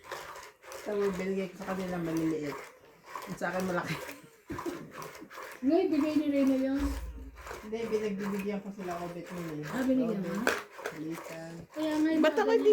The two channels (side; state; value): both; identical; correlation 1.00